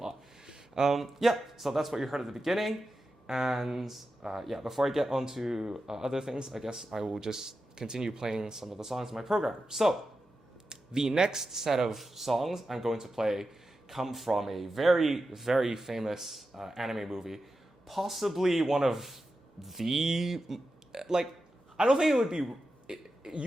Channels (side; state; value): both; normal; correlation 0.91